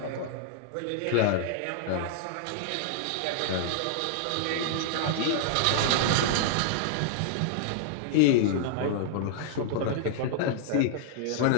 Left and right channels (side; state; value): both; different; correlation -0.01